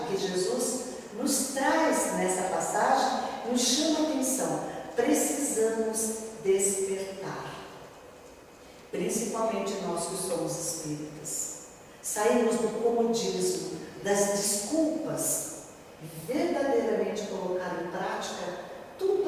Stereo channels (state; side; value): identical; both; correlation 1.00